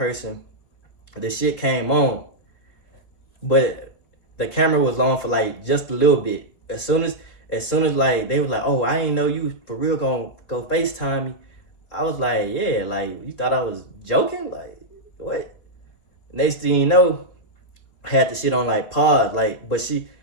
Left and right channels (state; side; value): late; right; 3.5 ms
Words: the shit came on, but the camera was on for like just a little bit. As soon as like they was like, oh, I ain't know you for real gonna go FaceTime me. I was like, yeah, like you thought I was joking? Like what? Next thing you know, I had the shit on like pause. Like, but he